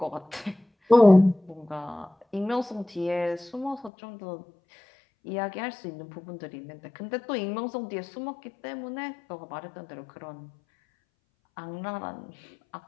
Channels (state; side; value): drops out; right; at 3.9 s